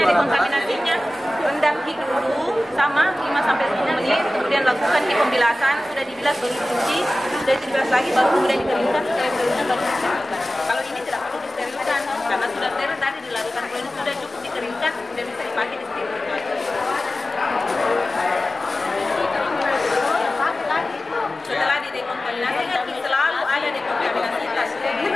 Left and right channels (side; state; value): both; normal; correlation 0.96